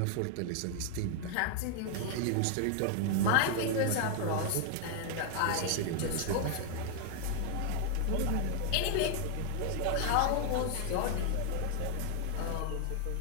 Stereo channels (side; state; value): both; different; correlation 0.00